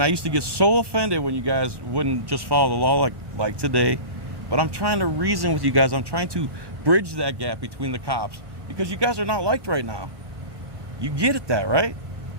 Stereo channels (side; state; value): left; late; 1.1 ms